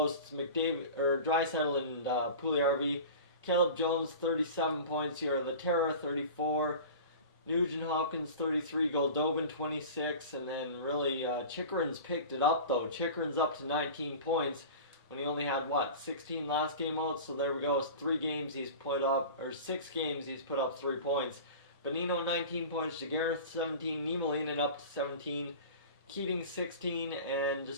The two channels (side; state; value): both; inverted; correlation -0.36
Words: It's Draisaitl and Puljujarvi. Caleb Jones, 37 points here. Laterra, 34. Nugent-Hopkins, 33. Goldobin, 26. And then really, Chychrun's picked it up, though. Chychrun's up to 19 points when he only had, 16 last game out. So there we go. It's 3 games he's put up, or 6 games he's put up 3 points. Bonino, 19 points. Giguere, 17. Niemelainen up to 17. Keating 16, and